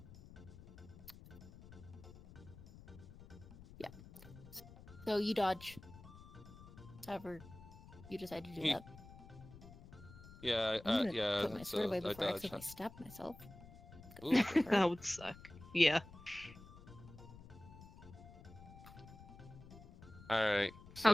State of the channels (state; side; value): noise; left; rumble, 17 dB below the sound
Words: So you dodge. However, you decide to do He- that. Yeah. I'm gonna Yeah. put my sword away I before I dodged. accidentally stab myself. Ooh. That would suck. Yeah. Alright, so...